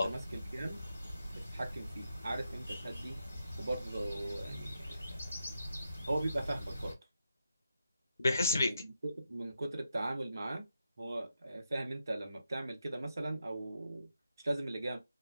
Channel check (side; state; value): both; inverted; correlation -0.85